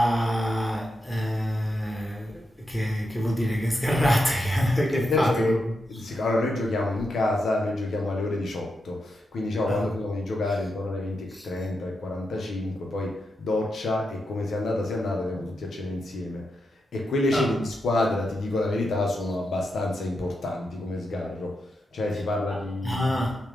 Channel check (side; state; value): both; normal; correlation 0.86